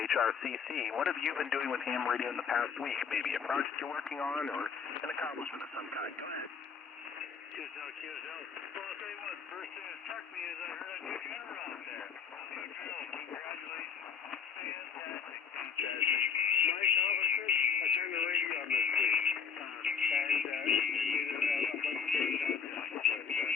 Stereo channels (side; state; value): right; quieter; 6.6 dB